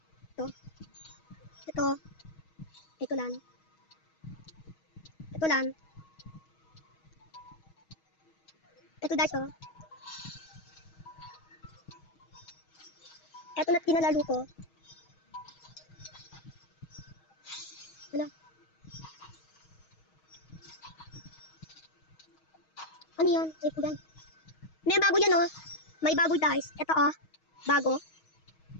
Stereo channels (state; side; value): late; right; 6.3 ms